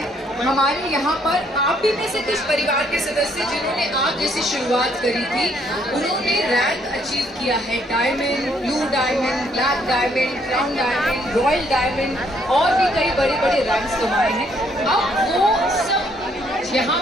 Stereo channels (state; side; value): normal; both; correlation 0.68